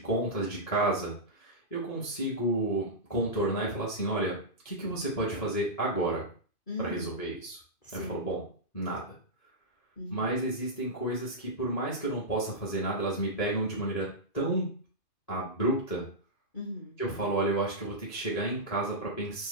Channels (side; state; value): right; late; 2.5 ms